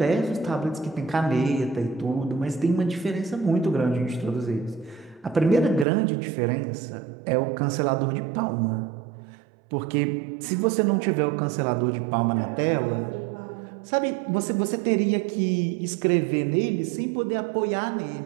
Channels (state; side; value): drops out; left; at 5.9 s